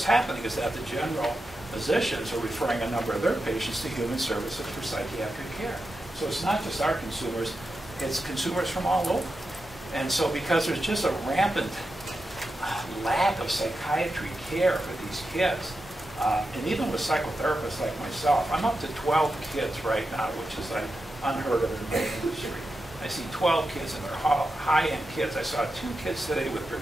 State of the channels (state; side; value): normal; both; correlation 0.89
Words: happening is that the general physicians are referring a number of their patients to human services for psychiatric care. So it's not just our consumers, it's consumers from all over. And so because there's just a rampant lack of psychiatry care for these kids, And even with psychotherapists like myself, I'm up to 12 kids right now, which is like unheard of in the industry. I see 12 kids, and they're high-end kids. I saw 2 kids today with